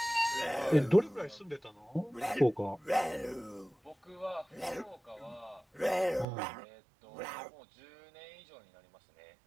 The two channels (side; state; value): left; drops out; at 6.2 s